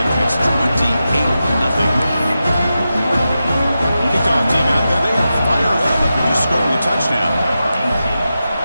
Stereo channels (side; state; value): both; inverted; correlation -0.91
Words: and it's 28-0. Kickoff team out there, they are fired up after just scoring a touchdown.